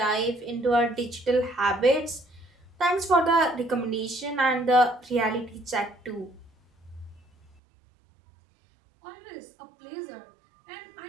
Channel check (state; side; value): drops out; left; at 7.5 s